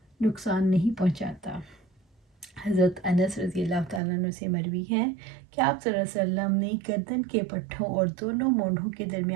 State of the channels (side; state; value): left; drops out; at 4.0 s